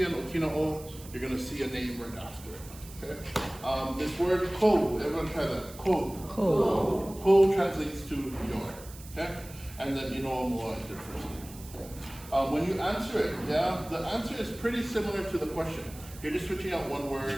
an okina o, you're going to see a name right after it. Okay? This word ko, everyone try that. Ko. Ko. Ko translates to your. Okay? And then Inoa mua is your first name. Okay? When you answer it, yeah, the answer is pretty similar to the question. You're just switching out one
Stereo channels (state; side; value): noise; right; hiss, 18 dB below the sound